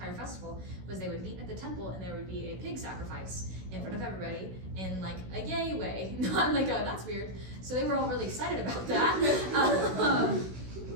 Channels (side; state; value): left; late; 16 ms